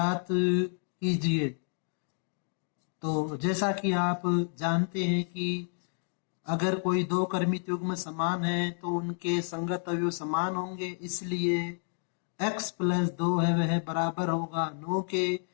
कीजिए। तो जैसा कि आप जानते हैं कि अगर कोई दो क्रमित युग्म समान है तो उनके संगत अवयव समान होंगे, इसलिए x प्लस 2 है वह बराबर होगा 9 के।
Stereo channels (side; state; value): right; silent; 58 dB below the other